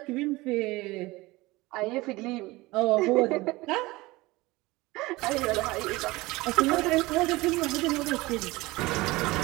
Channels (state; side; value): quieter; left; 21.0 dB